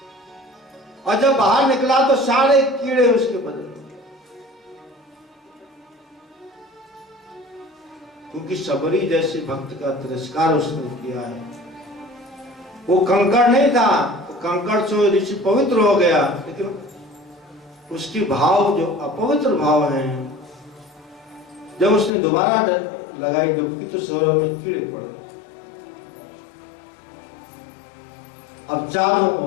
और जब बाहर निकला तो सारे कीड़े उसके बदन में। क्योंकि सबरी जैसे भक्त का तिरस्कार उसने किया है। वो कंकड़ नहीं था, तो कंकड़ से ऋषि पवित्र हो गया, लेकिन उसकी भाव जो अपवित्र भाव है, जब उसने दोबारा लगाई डुबकी तो सरोवर में कीड़े पड़ गए। अब चारों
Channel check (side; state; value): right; drops out; at 22.1 s